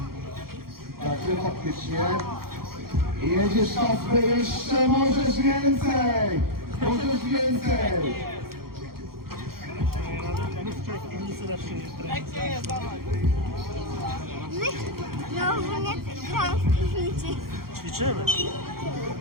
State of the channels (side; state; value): left; late; 0.94 ms